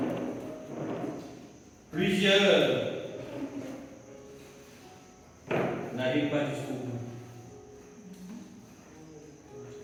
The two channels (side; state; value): both; identical; correlation 1.00